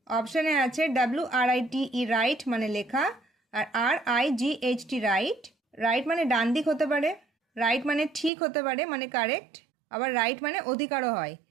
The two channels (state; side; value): drops out; left; at 8.3 s